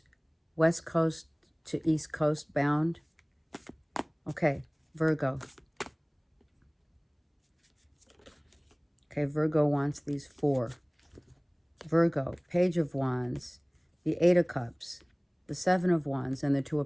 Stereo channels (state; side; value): identical; both; correlation 1.00